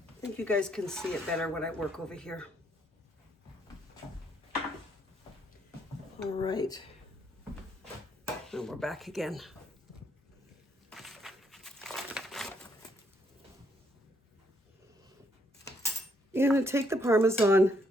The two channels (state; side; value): normal; both; correlation 0.72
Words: think you guys can see it better when I work over here. All right. And we're back again. You're going to take the Parmesan.